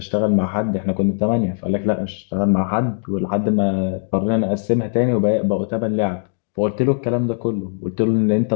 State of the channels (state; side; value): silent; right; 56 dB below the other